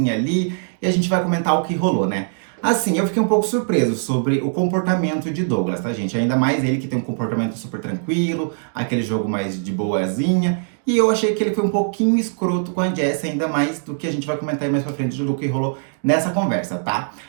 ali e a gente vai comentar o que rolou, né? Assim, eu fiquei um pouco surpreso sobre o comportamento de Douglas, tá, gente? Ainda mais ele que tem um comportamento super tranquilo, aquele jogo mais de boazinha. E eu achei que ele foi um pouquinho escroto com a Jess, ainda mais do que a gente vai comentar aí mais pra frente do que rolou nessa conversa, tá?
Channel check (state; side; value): silent; left; digital silence